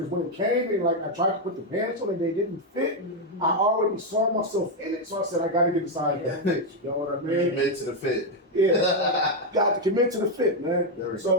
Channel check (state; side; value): normal; both; correlation 0.03